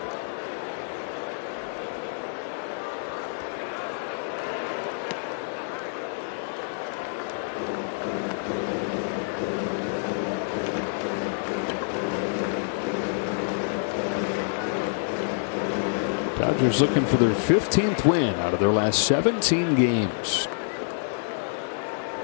Dodgers looking for their 15th win out of their last 17 games.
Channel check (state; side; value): silent; right; digital silence